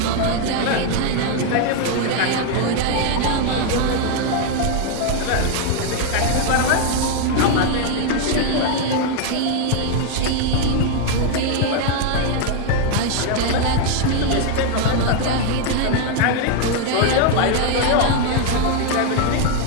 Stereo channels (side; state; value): both; different; correlation 0.01